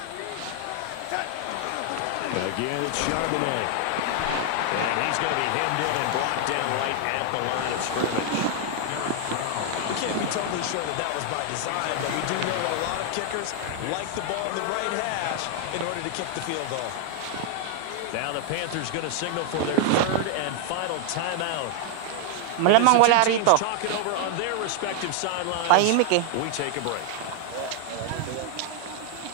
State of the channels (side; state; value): both; different; correlation 0.00